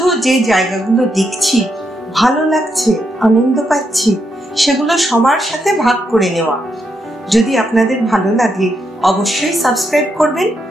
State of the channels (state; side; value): normal; both; correlation 0.81